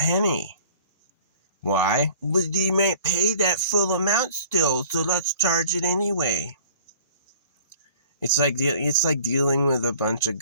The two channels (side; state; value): both; inverted; correlation -0.49